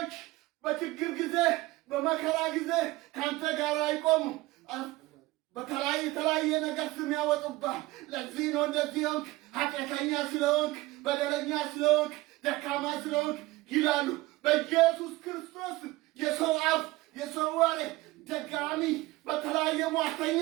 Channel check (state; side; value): quieter; left; 19.8 dB